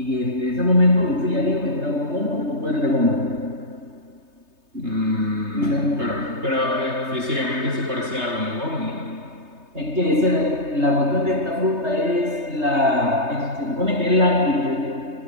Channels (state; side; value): late; left; 3.3 ms